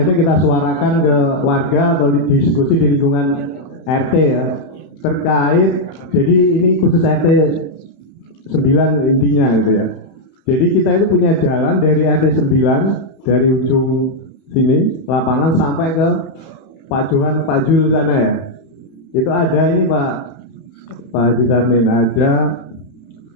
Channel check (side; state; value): right; late; 31 ms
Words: kita suarakan ke warga atau diskusi di lingkungan RT ya, terkait, jadi ini khusus RT 9 intinya gitu ya. Jadi kita itu punya jalan dari RT 9 dari ujung sini lapangan sampai ke Pak Jul sana ya. Itu ada ini Pak Haji Sarmin, ada